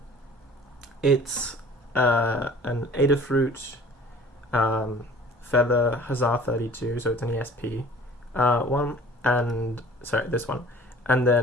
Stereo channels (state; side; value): normal; both; correlation 0.48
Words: It's an Adafruit Feather Huzzah 32, so it's an ESP one, and sorry, this one, and